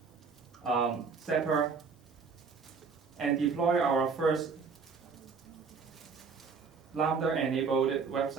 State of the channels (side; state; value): left; quieter; 5.2 dB